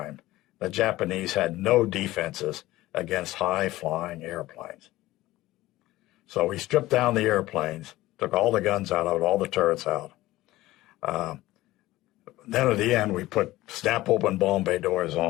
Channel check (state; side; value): quieter; right; 17.2 dB